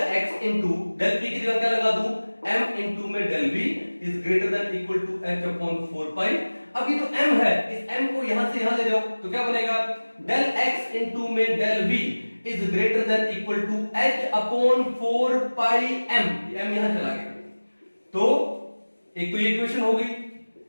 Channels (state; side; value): inverted; both; correlation -1.00